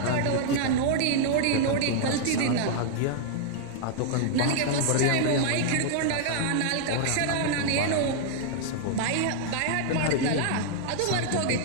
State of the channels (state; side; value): different; both; correlation -0.01